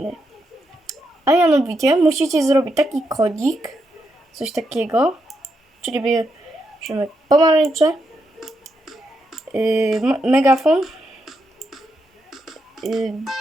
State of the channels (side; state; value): both; normal; correlation 0.82